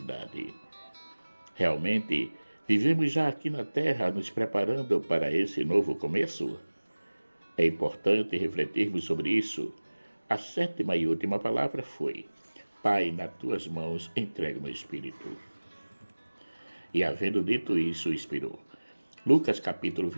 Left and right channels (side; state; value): both; inverted; correlation -1.00